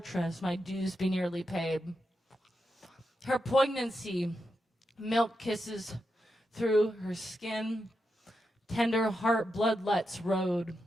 my dues be nearly paid. Her poignancy, milk kisses through her skin, tender heart bloodlets road,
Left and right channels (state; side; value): normal; both; correlation 0.86